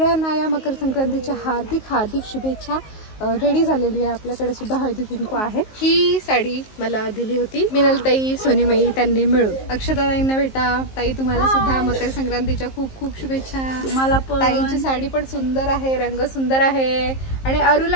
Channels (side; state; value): right; late; 19 ms